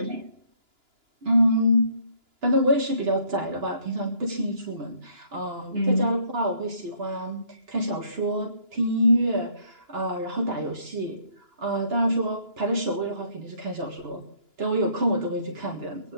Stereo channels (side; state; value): left; late; 2.9 ms